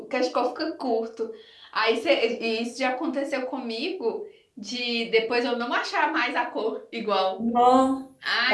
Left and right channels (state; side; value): identical; both; correlation 1.00